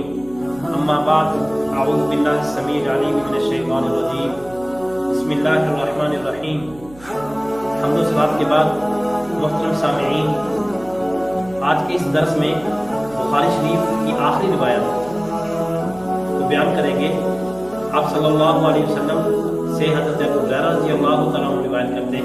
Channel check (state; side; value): noise; right; hum, 21 dB below the sound